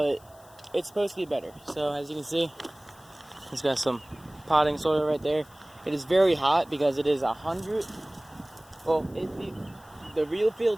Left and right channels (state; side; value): noise; left; hiss, 26 dB below the sound